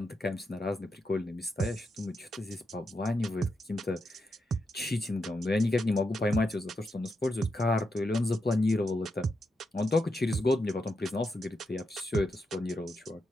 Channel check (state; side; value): normal; both; correlation 0.84